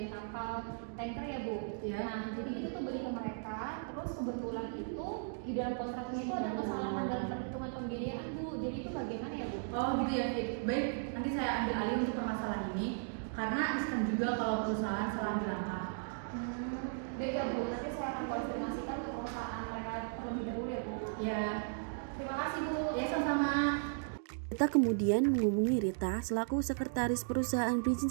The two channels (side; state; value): left; silent; digital silence